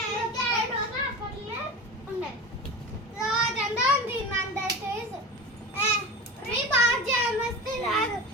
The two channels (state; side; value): normal; both; correlation 0.30